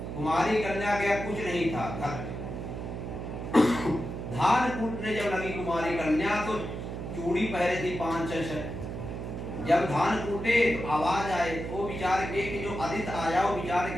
कुमारी कन्या के कुछ नहीं था, घर धान कूटने जब लगी कुमारी कन्या तो चूड़ी पहरे थी 5-6। जब धान कूटे तो आवाज आए, वो विचार के कि जो अतिथि आया वो विचार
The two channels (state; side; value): noise; right; hum, 6 dB below the sound